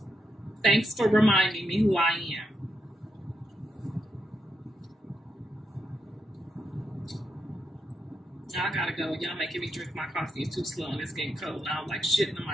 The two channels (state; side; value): normal; both; correlation 0.82